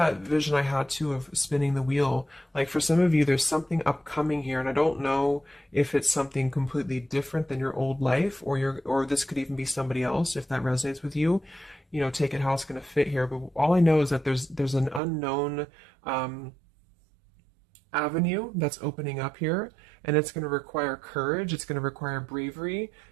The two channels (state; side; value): drops out; left; at 15.0 s